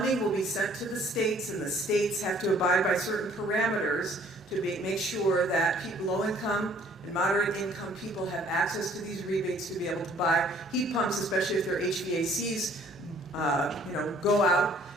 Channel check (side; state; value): both; normal; correlation 0.58